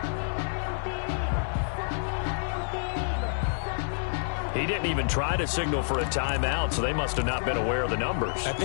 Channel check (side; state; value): right; silent; digital silence